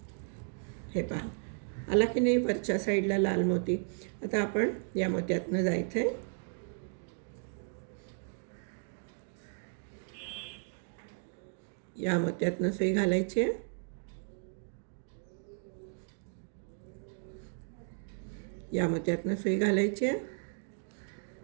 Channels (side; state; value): left; silent; 55 dB below the other